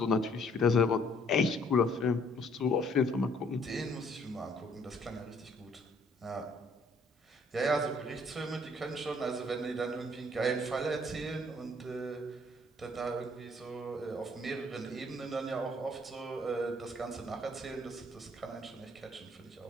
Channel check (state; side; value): normal; both; correlation 0.63